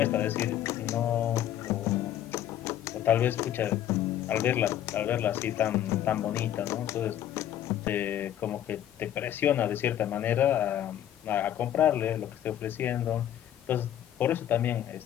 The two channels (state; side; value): quieter; right; 11.4 dB